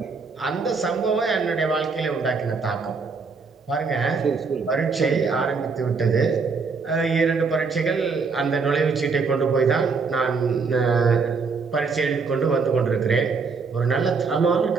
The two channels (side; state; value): left; quieter; 4.8 dB